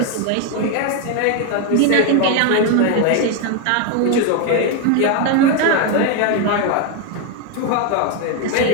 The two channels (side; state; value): both; different; correlation 0.01